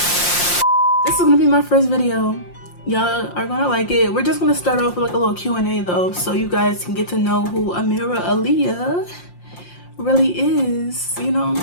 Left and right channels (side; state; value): right; late; 5.7 ms